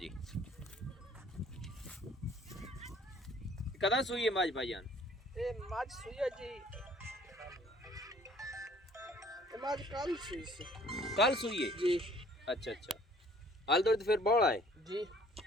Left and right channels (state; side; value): normal; both; correlation 0.56